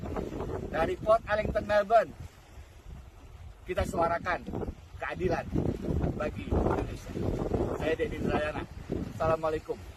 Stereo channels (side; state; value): both; identical; correlation 1.00